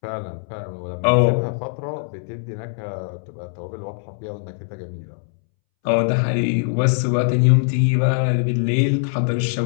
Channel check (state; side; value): silent; right; 64 dB below the other